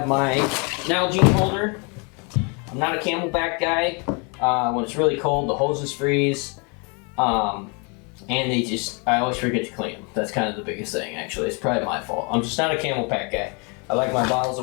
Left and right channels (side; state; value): right; quieter; 33.4 dB